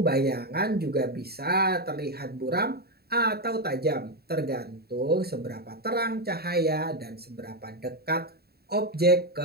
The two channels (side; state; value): left; late; 0.46 ms